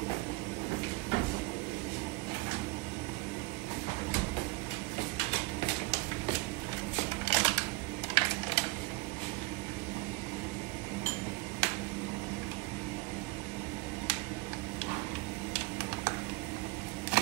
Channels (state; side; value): quieter; left; 23.2 dB